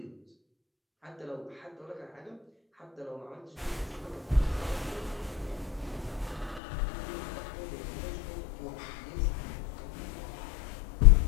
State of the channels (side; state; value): right; drops out; at 6.6 s